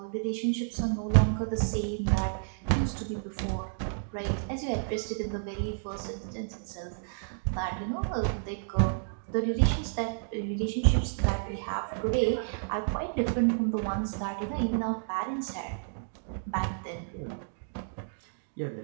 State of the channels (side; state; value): left; silent; digital silence